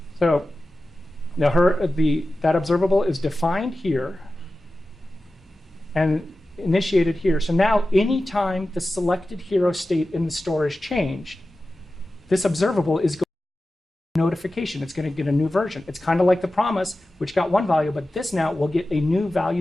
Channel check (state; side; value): normal; both; correlation 0.94